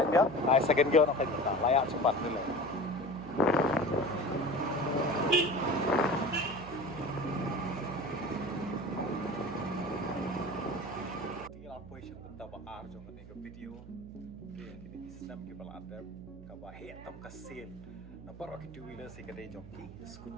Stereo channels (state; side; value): noise; right; hum, 15 dB below the sound